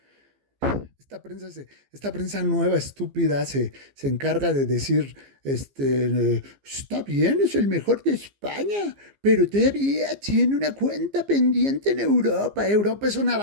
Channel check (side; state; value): left; late; 15 ms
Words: esta prensa nueva, estúpida, se encarga de decir, está bien, es el mejor de España, pero todavía tiene una cuenta pendiente en Europa. Europa es una